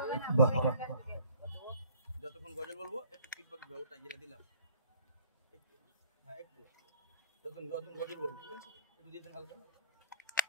যতক্ষণ গজল বলবো একটু ফিডব্যাক দাও ওটা যেটা দিলাম একটু যতক্ষণ গজল বলবো ঠিক আছে একটু দিতেন হালকা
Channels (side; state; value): both; inverted; correlation -0.52